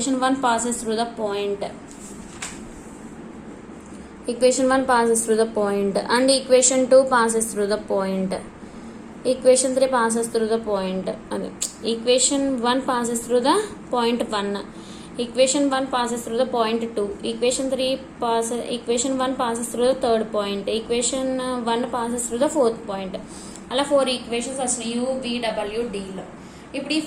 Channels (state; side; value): identical; both; correlation 1.00